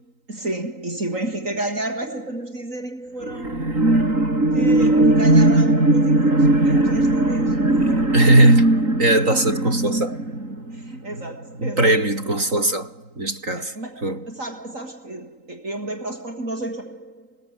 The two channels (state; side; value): late; left; 3.9 ms